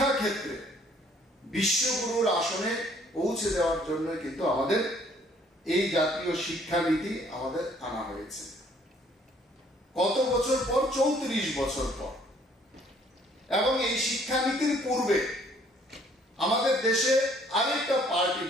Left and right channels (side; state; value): both; normal; correlation 0.61